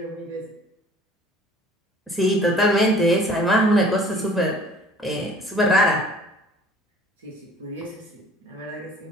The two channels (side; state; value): both; normal; correlation 0.51